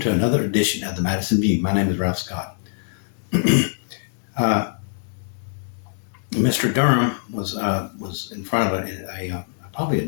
another edition of the Madison View. My name is Ralph Scott. Mr. Durham was in front of probably a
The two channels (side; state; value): right; silent; digital silence